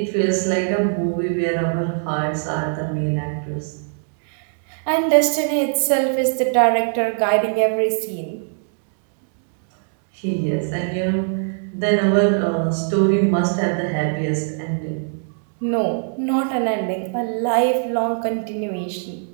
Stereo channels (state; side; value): silent; left; digital silence